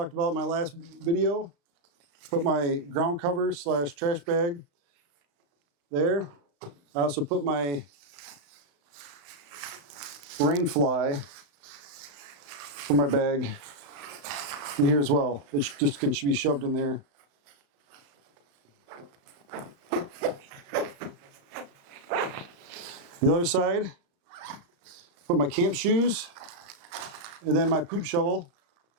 about in my last video. Put my ground cover / trash bag there. I also put my rain fly for my bag in here as well. It just can be shoved in there. The other side, put my camp shoes and then my poop shovel,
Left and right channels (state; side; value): late; left; 35 ms